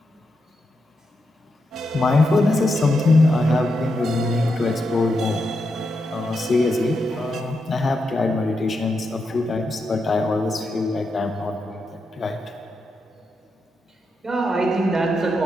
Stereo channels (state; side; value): normal; both; correlation 0.85